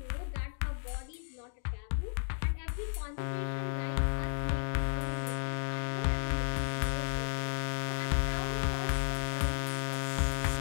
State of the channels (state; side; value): silent; right; digital silence